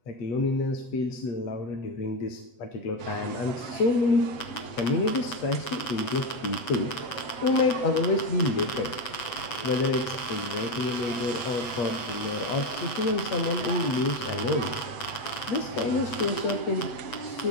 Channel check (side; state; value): right; late; 7.9 ms